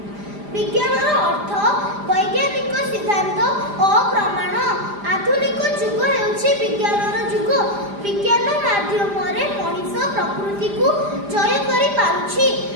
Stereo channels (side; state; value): left; late; 5.0 ms